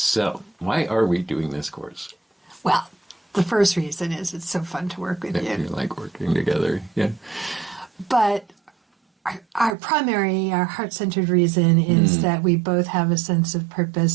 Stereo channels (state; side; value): drops out; left; at 9.8 s